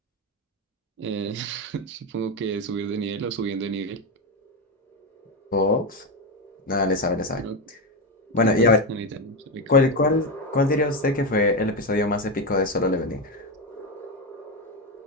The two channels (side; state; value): both; normal; correlation 0.11